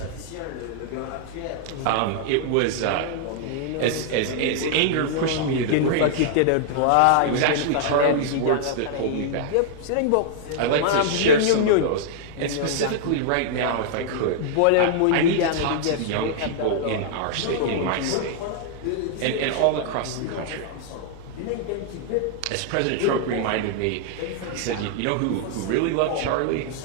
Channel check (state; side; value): different; both; correlation -0.01